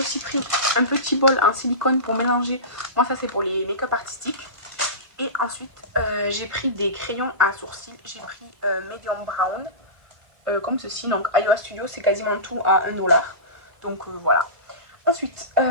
pris un petit bol en silicone pour mélanger. Moi ça c'est pour les make-up artistiques. Et ensuite, j'ai pris des crayons à sourcils. J'ai pris Medium Brown, comme ceci. Donc, iOS Studio, c'est quasiment tout à 1 $. Donc, voilà. Ensuite,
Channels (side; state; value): left; late; 1.4 ms